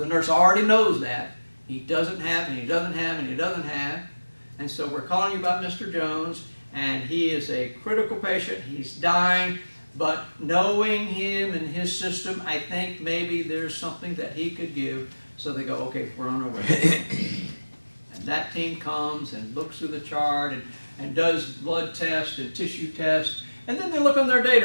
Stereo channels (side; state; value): both; inverted; correlation -1.00